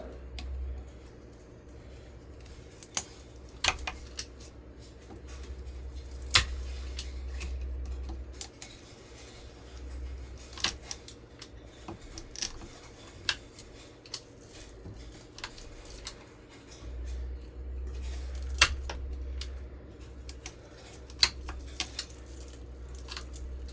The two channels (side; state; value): both; identical; correlation 1.00